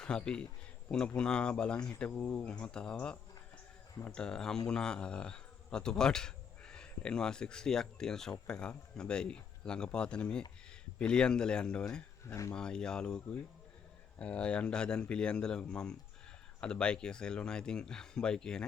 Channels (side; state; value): right; quieter; 6.9 dB